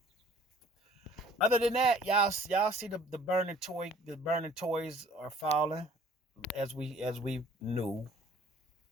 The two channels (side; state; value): both; normal; correlation 0.54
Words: Other than that, y'all see the burning toys are falling as we knew.